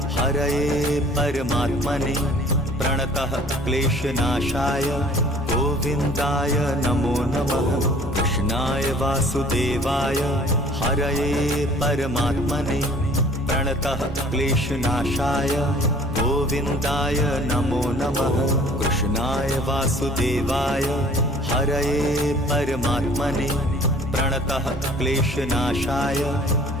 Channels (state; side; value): normal; both; correlation 0.52